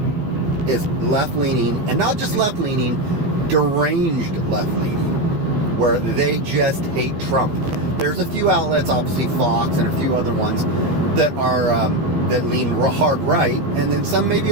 is left-leaning, and not just left-leaning, deranged left-leaning, where they just hate Trump. There's a few outlets, obviously Fox and a few other ones, that are that lean hard right, and then some maybe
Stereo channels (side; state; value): left; late; 14 ms